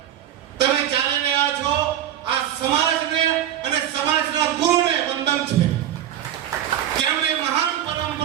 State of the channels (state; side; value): quieter; left; 11.1 dB